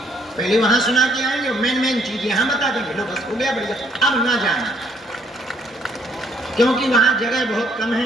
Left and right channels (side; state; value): both; normal; correlation 0.66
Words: पहले वहां सुना के आएंगे, मेन चीज यहाँ बता देंगे, लो बस हो गया, बढ़िया। अब ना जाना, क्योंकि वहां जगह बहुत कम